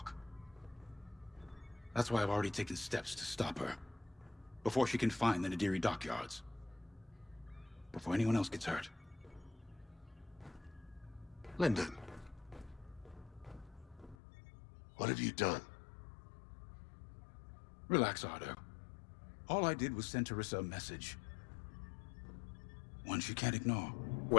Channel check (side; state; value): right; drops out; at 14.2 s